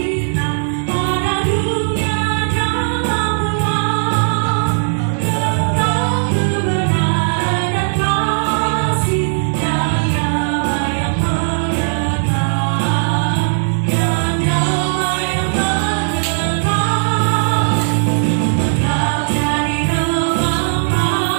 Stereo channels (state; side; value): silent; left; digital silence